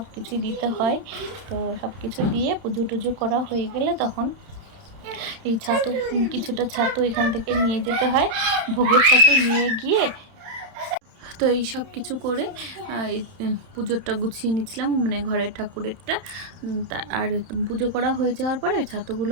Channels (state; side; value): late; left; 31 ms